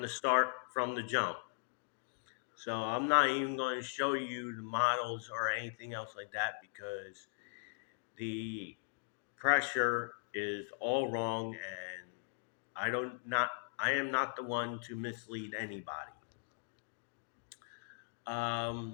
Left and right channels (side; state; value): right; silent; digital silence